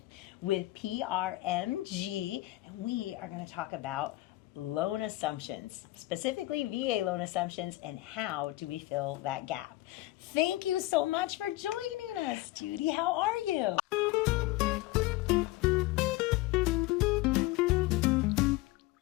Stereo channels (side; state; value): right; quieter; 18.3 dB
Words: with PRMG, and we are going to talk about loan assumptions, specifically VA loan assumptions, and how do we fill that gap. Thank you so much for joining us, Judy. How are you?